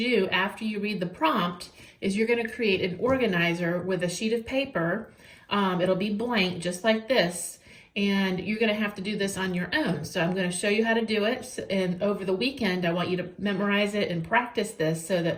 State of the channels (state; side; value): identical; both; correlation 1.00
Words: do after you read the prompt is you're going to create an organizer with a sheet of paper. It'll be blank just like this. And you're going to have to do this on your own. So I'm going to show you how to do it. And over the weekend, I want you to memorize it and practice this so